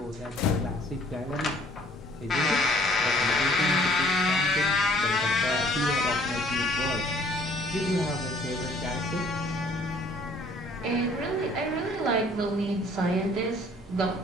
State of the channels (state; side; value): normal; both; correlation 0.58